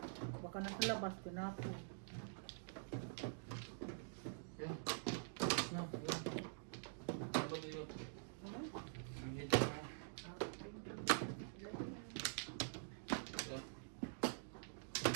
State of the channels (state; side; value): silent; left; digital silence